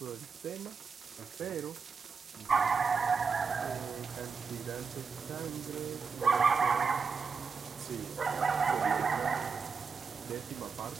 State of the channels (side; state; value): left; quieter; 5.4 dB